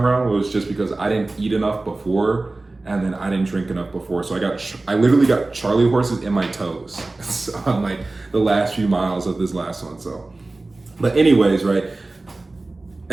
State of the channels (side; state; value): left; quieter; 3.1 dB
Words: around was just because I didn't eat enough before, and then I didn't drink enough before. So I literally got Charlie horses in my toes on like the last few miles of this last one. So, but anyways, right?